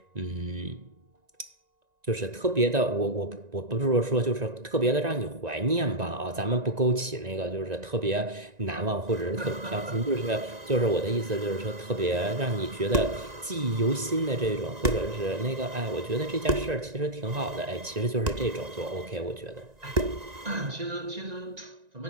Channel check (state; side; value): late; left; 1.9 ms